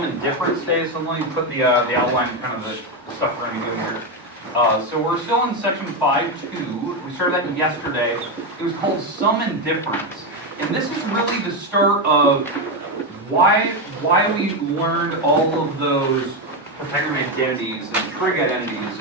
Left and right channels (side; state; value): both; normal; correlation 0.09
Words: and difference today. So let me put the outline, kind of the stuff we're going to be doing here. So we're still in section 5.2. We started that yesterday. It was called sum and difference. And this is really the start of why we learned all of those Pythagorean identities and trig identities